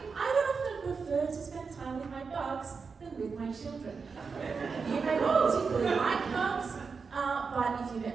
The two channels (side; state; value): left; quieter; 5.2 dB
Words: I would often prefer to spend time with my bugs than with my children. You may not particularly like bugs, but if you met